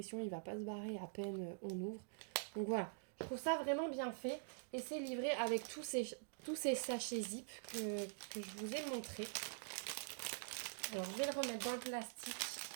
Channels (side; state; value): left; silent; digital silence